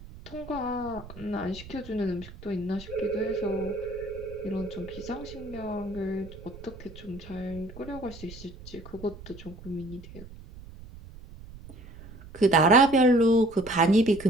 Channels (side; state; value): right; noise; rumble, 16 dB below the sound